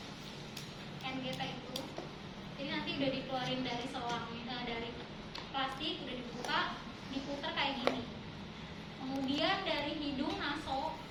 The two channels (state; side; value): identical; both; correlation 1.00